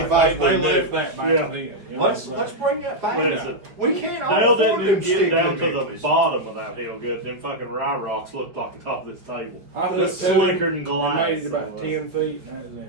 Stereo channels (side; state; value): left; late; 4.9 ms